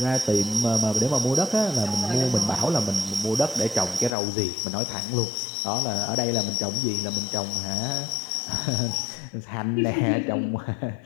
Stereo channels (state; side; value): drops out; right; at 4.2 s